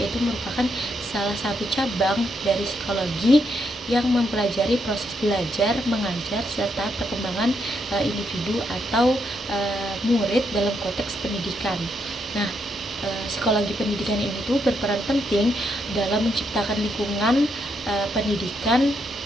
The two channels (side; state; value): both; normal; correlation 0.78